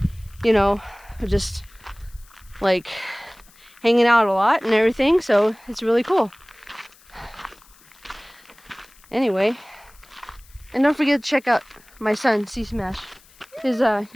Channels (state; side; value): noise; left; hiss, 27 dB below the sound